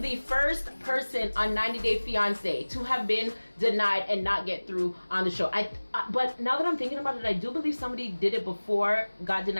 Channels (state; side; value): inverted; both; correlation -1.00